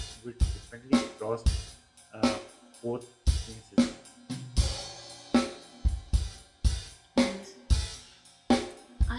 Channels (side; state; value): both; identical; correlation 1.00